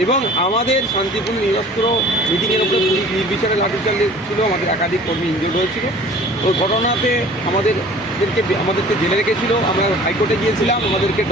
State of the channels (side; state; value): both; normal; correlation 0.47